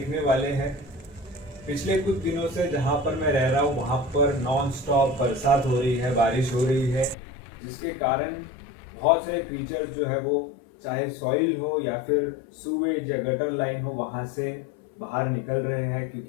वाले हैं। पिछले कुछ दिनों से जहाँ पर मैं रह रहा हूँ वहाँ पर नॉन स्टॉप बरसात हो रही है, बारिश हो रही है, जिसके कारण बहुत सारे क्रीचर्स जो है वो चाहे सॉइल हो या फिर सूवेज या गटर लाइन हो वहाँ से बाहर निकल रहे हैं,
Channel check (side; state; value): right; drops out; at 7.2 s